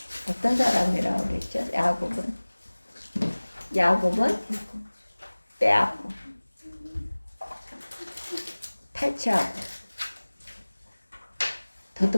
어떤 사람이라고 그랬죠? 야곱은 빼앗고 탈취하고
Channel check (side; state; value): both; inverted; correlation -1.00